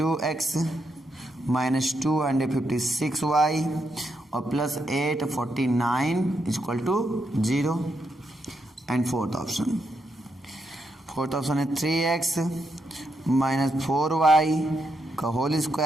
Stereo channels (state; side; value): normal; both; correlation 0.81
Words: माइनस 256y और plus 849 equal to 0। And fourth option है 3x माइनस 4y का whole